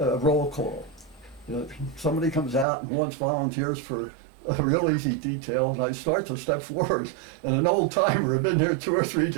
call. Somebody comes out and wants volunteers for a real easy detail, and I start to step forward, and an old timer had been there 2 or 3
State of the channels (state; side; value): drops out; left; at 2.7 s